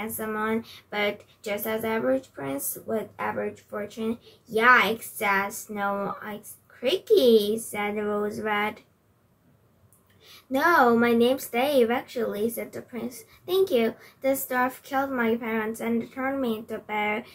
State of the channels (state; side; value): identical; both; correlation 1.00